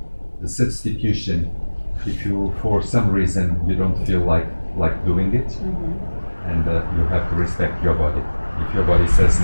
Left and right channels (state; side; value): inverted; both; correlation -1.00